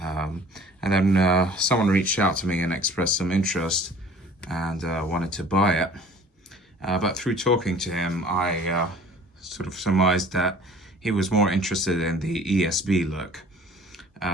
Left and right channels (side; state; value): both; normal; correlation 0.50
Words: and then someone reached out to me and expressed some interest and wanted to buy it. But through talking to him, I sort of surmised that he was more interested in the ESB look.